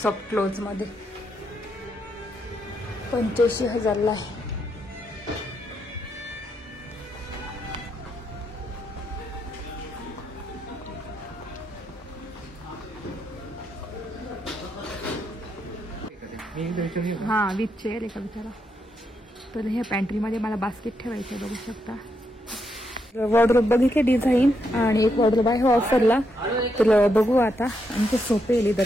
सॉफ्ट क्लोज मध्ये 85,000ला आहे. हा विथ चेअर आहे का विचारा. तर ह्या पॅन्ट्रीमध्ये मला बास्केट ठेवायचं आहे. बघू शकता. वॉर्डरोब बघितले डिझाईन. आणि एक वॉर्डरोब आहे ऑफरला तर बघू आता आमचे सोपे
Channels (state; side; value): normal; both; correlation 0.80